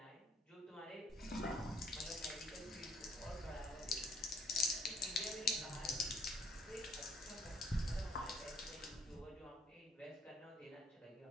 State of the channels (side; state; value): both; normal; correlation 0.65